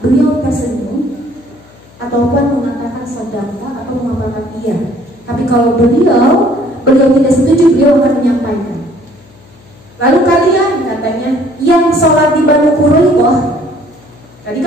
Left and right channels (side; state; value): left; noise; hum, 26 dB below the sound